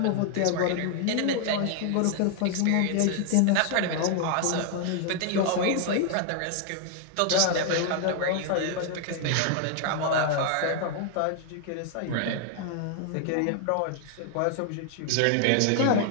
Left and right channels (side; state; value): both; different; correlation 0.00